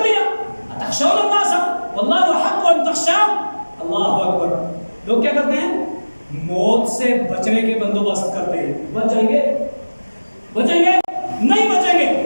لیا. اتخشون الناس واللہ احق ان تخشوا. اللہ اکبر. لوگ کیا کرتے ہیں, موت سے بچنے کے بندوبست کرتے ہیں. بچ جائیں گے, بچیں گے نہیں بچیں گے.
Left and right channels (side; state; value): both; inverted; correlation -1.00